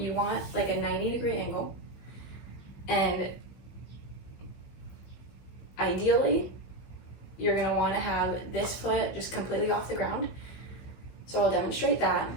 want like a 90-degree angle, and ideally, you're gonna wanna have this foot just completely off the ground. So I'll demonstrate that.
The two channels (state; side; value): late; right; 16 ms